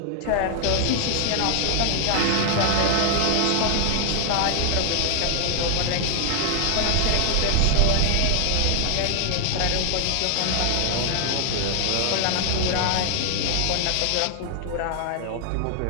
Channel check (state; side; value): different; both; correlation 0.00